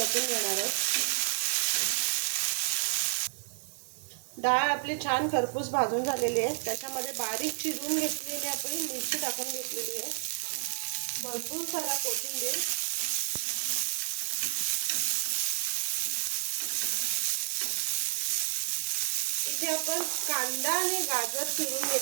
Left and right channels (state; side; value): silent; left; 57 dB below the other